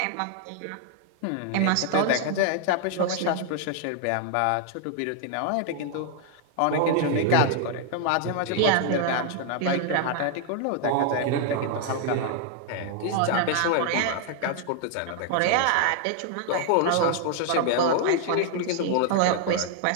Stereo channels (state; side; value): different; both; correlation 0.00